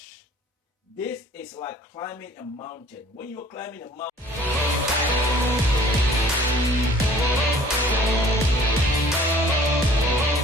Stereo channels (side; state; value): both; normal; correlation 0.52